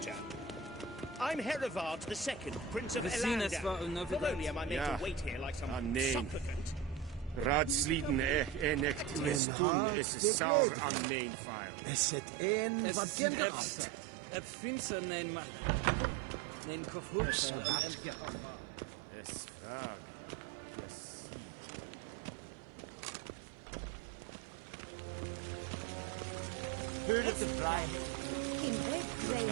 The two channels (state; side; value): drops out; left; at 9.4 s